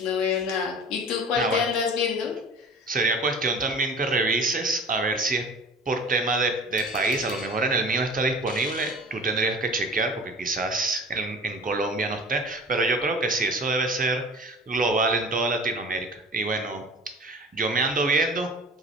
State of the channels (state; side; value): normal; both; correlation 0.41